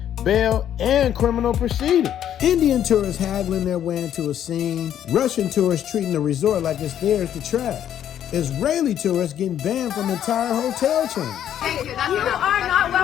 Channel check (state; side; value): quieter; right; 10.4 dB